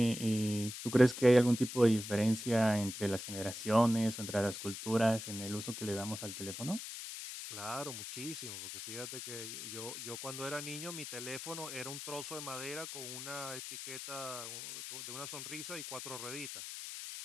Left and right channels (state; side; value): noise; left; hiss, 8 dB below the sound